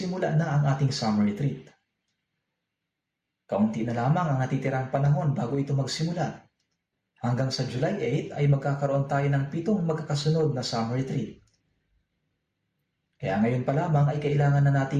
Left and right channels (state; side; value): identical; both; correlation 1.00